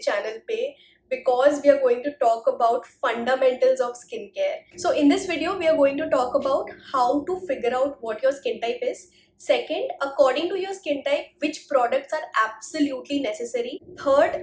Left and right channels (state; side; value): identical; both; correlation 1.00